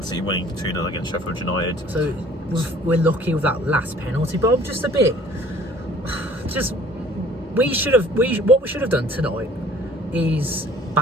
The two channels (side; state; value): both; normal; correlation 0.53